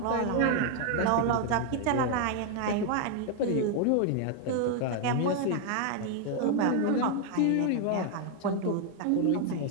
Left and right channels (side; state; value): both; different; correlation 0.00